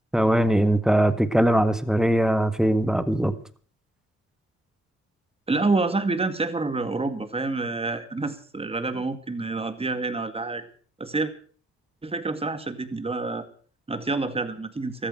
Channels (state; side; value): normal; both; correlation 0.78